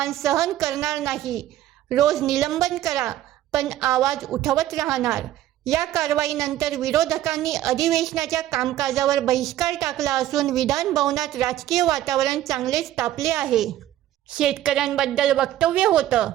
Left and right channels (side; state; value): left; quieter; 13.3 dB